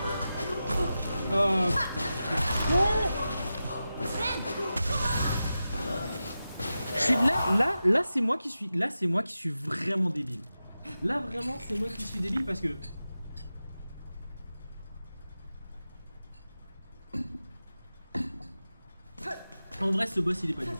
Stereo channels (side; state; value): both; inverted; correlation -0.92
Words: Oh, je suis là c'est moi qui suis vraiment débile. Là vraiment c'est moi qui suis débile parce que en vrai ce boss il est pas dur.